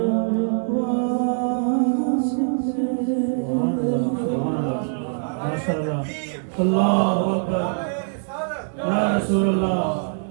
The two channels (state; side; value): silent; left; 60 dB below the other